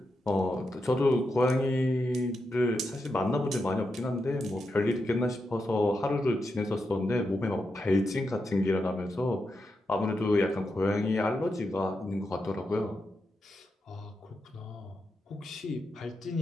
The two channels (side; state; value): both; normal; correlation 0.86